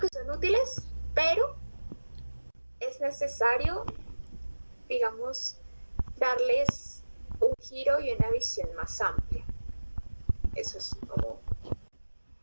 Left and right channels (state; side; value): inverted; both; correlation -1.00